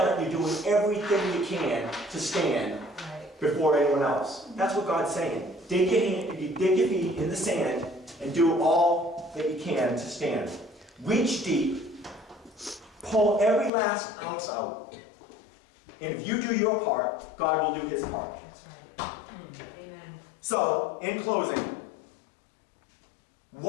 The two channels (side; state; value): right; drops out; at 13.7 s